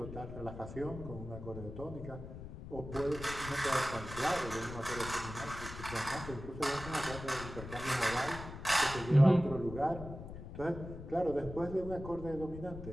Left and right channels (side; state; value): left; noise; rumble, 11 dB below the sound